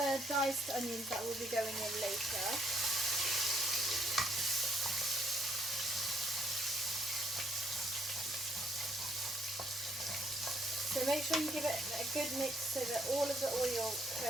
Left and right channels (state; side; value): normal; both; correlation 0.70